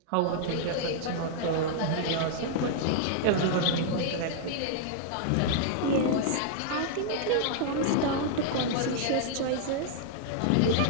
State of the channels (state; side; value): different; both; correlation -0.01